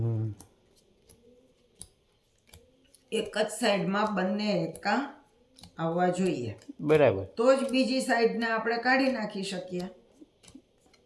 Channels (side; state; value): both; identical; correlation 1.00